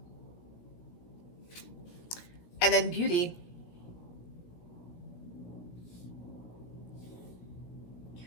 And then beauty.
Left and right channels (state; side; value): late; right; 17 ms